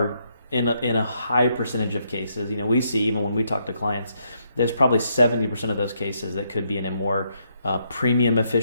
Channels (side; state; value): both; inverted; correlation -0.75